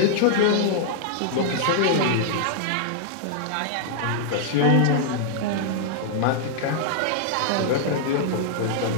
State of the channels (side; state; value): both; different; correlation -0.01